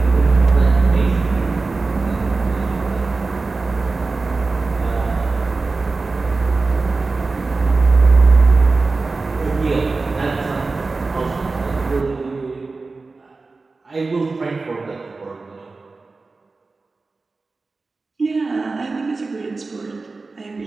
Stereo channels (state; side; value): quieter; left; 3.8 dB